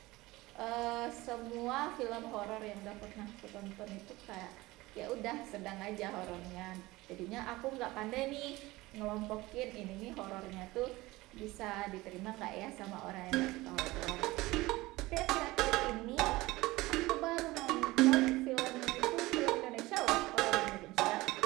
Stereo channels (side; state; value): left; quieter; 19.8 dB